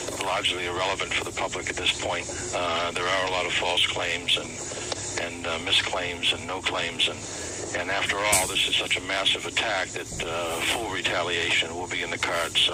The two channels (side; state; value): both; identical; correlation 1.00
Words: largely irrelevant for the public at this point. There are a lot of false claims and misclaims and no claims. And after all, this is such a massive attack that full retaliation will be in the cards.